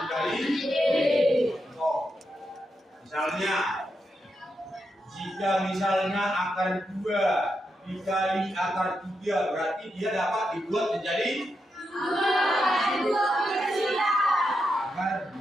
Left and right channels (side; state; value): both; normal; correlation 0.85